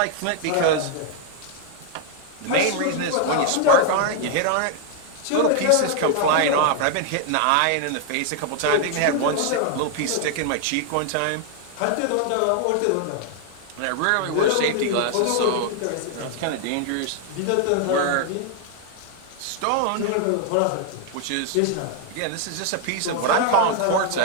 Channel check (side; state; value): both; different; correlation 0.00